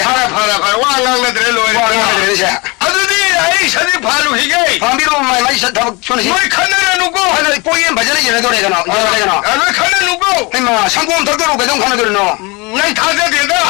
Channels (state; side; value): quieter; right; 26.7 dB